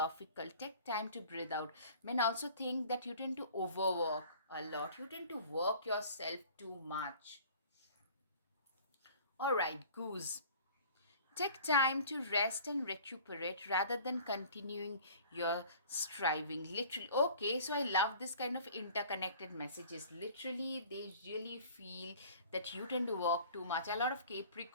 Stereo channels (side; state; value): both; inverted; correlation -0.47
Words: Take time to breathe out. Men also think that you tend to overwork a lot, you tend to work yourself too much. All right, goose. Take time to rest and recuperate rather than continuing your striving. Literally, okay, so I love this kind of interconnected messages. Literally, they really feel that you tend to work too much. A lot of